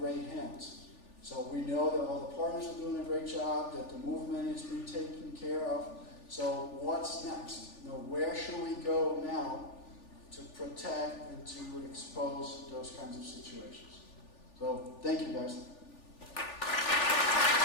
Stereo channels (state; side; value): late; right; 3.4 ms